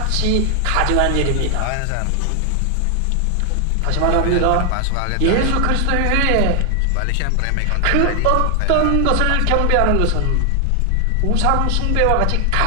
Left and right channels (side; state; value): both; different; correlation 0.00